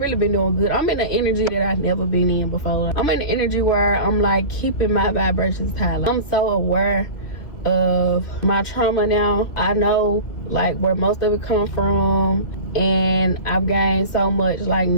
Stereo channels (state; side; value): late; right; 2.7 ms